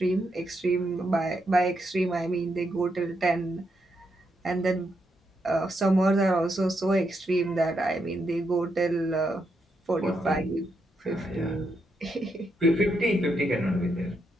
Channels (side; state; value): both; normal; correlation 0.81